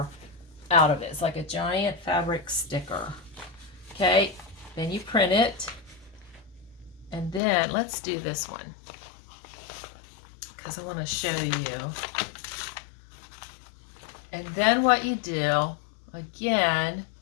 out of it. It's like a giant fabric sticker. Okay, then you print it, and then let's do this one because I want to show you. And then what you do, again,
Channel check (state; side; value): drops out; right; at 7.4 s